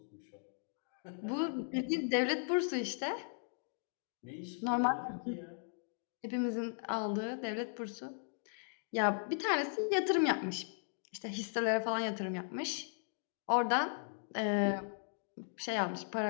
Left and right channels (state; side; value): silent; right; digital silence